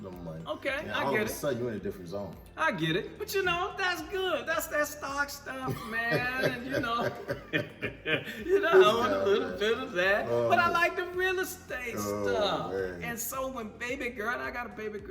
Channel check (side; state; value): both; identical; correlation 1.00